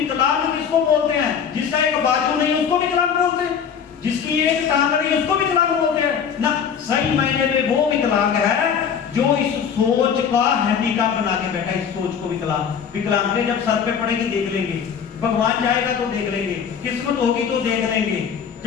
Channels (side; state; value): right; quieter; 7.4 dB